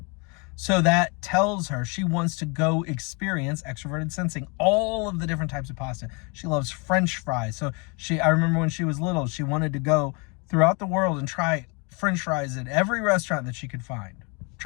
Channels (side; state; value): right; quieter; 32.0 dB